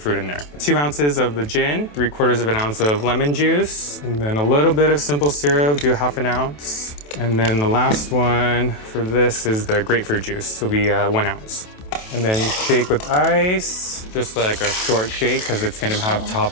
in there. 2 ounces of the gin, 3/4 of an ounce of lemon juice, and then a little bit of simple syrup, do 1/2 ounce. And then the last one for this is the grapefruit juice, will be 1 ounce. And then shake with ice, just like a short shake, because it's gonna have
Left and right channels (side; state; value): right; late; 27 ms